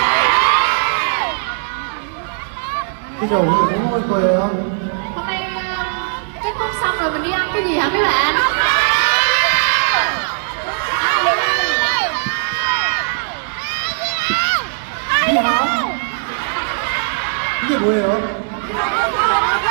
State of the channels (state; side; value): silent; left; 66 dB below the other